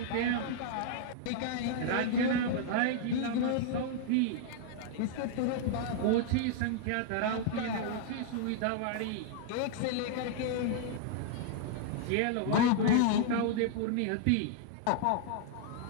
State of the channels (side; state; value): both; different; correlation -0.01